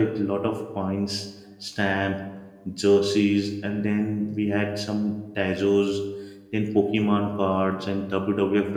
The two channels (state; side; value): identical; both; correlation 1.00